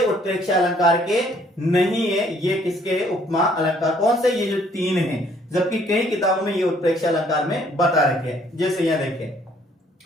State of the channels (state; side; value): normal; both; correlation 0.63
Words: उत्प्रेक्षा अलंकार के नहीं है, ये किसके? उपमा अलंकार। कौन से? ये जो तीन है, जबकि कई किताबों में ये उत्प्रेक्षा अलंकार में बता रखे हैं। जैसे यहाँ देखें,